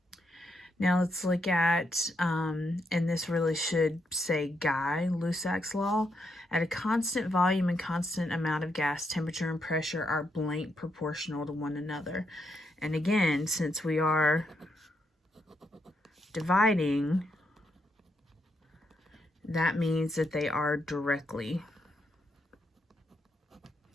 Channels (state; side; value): normal; both; correlation 0.79